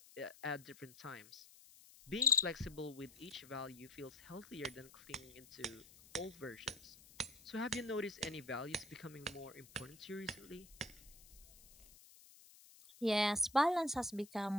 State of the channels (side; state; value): left; noise; hiss, 21 dB below the sound